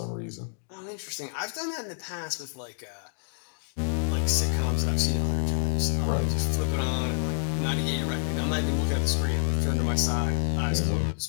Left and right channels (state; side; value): silent; right; digital silence